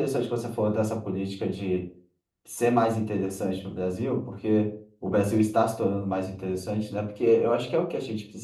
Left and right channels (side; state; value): both; identical; correlation 1.00